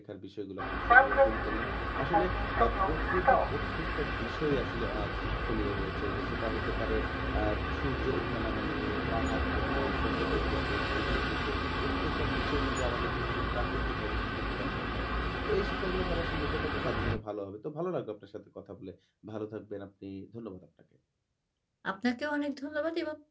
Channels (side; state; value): both; identical; correlation 1.00